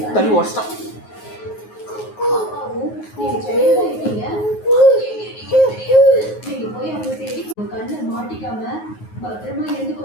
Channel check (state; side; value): late; right; 9.4 ms